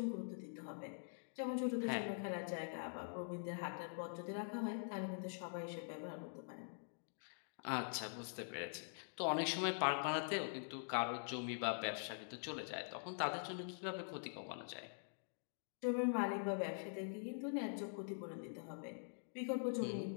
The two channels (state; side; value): silent; right; digital silence